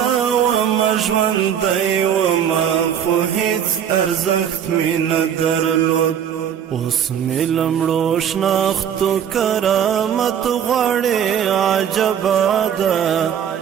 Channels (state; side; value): quieter; left; 8.9 dB